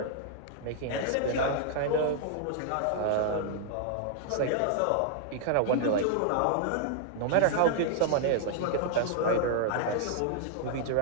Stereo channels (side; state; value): both; different; correlation -0.01